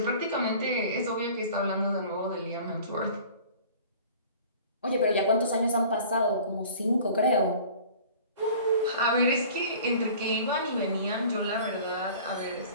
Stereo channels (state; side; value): inverted; both; correlation -0.46